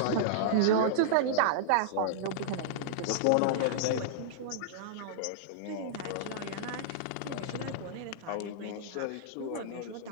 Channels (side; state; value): both; different; correlation -0.01